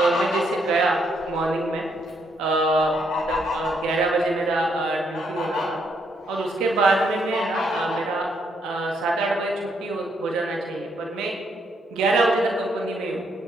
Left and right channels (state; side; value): normal; both; correlation 0.74